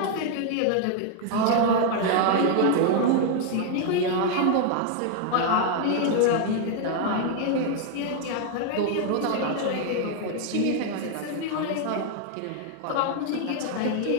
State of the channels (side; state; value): both; different; correlation 0.00